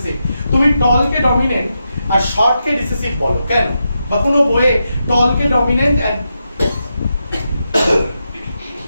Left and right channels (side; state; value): both; inverted; correlation -0.86